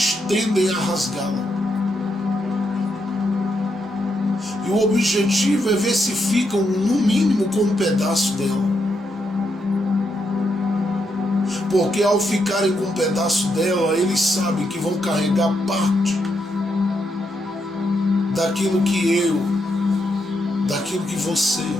tendem a rasgá-la. E o objetivo é ver se ficam, no mínimo, com um pedaço dela. Porque ao ficarem com um pedaço dela, eles sabem que vão carregar parte daquilo que você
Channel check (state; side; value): normal; both; correlation 0.80